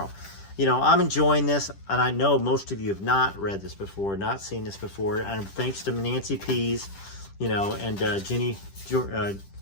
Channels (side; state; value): right; late; 10 ms